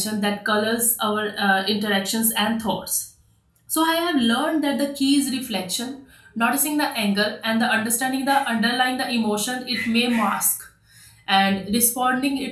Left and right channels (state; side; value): identical; both; correlation 1.00